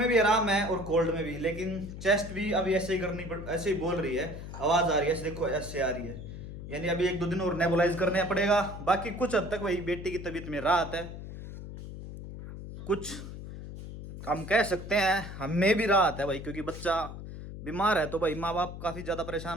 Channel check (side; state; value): left; noise; hum, 10 dB below the sound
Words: भी आराम है और कोल्ड में भी, लेकिन चेस्ट भी अभी ऐसे ही करनी पड़, ऐसे ही बोल रही है। आवाज आ रही है ऐसे, देखो ऐसे आ रही है। यानी अभी 1-2 दिन और नेबुलाइज करने पड़ेगा। बाकी कुछ हद तक भाई बेटी की तबीयत में राहत है। कुछ हम कह सकते हैं हमें भी राहत है भाई, क्योंकि बच्चा बीमार है तो भाई माँ बाप काफी ज्यादा